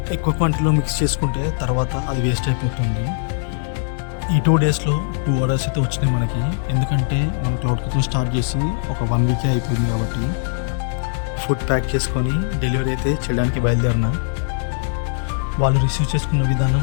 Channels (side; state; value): right; silent; digital silence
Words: ఎక్కువ క్వాంటిటీలో మిక్స్ చేసుకుంటే తర్వాత అది వేస్ట్ అయిపోతుంది. ఈ 2 డేస్లో 2 ఆర్డర్స్ అయితే వచ్చినాయి మనకి, ఎందుకంటే మనం క్లౌడ్ కిచెన్ స్టార్ట్ చేసి ఒక 1 వీకే అయిపోయింది కాబట్టి. ఫుడ్ ప్యాక్ చేసుకొని డెలివరీ అయితే చేయడానికి బయలుదేరిన. వాళ్ళు రిసీవ్ చేసుకున్న విధానం